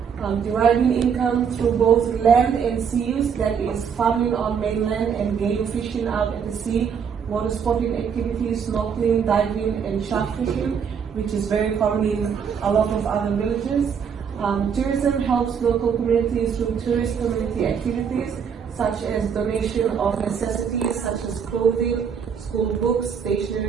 Deriving income through both land and sea use, that is farming on mainland and game fishing out at the sea, water sporting activities, snorkeling, diving, and shark fishing, which is very common in a lot of other villages. Tourism helps local communities through tourist community activities, such as donation of necessities such as clothing, school books,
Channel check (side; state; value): left; quieter; 7.0 dB